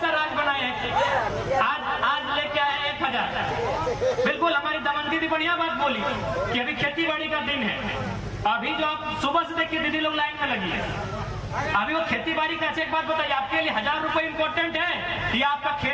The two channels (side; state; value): both; identical; correlation 1.00